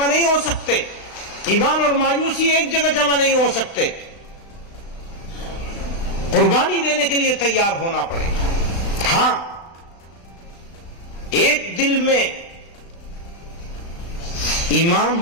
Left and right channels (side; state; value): right; late; 36 ms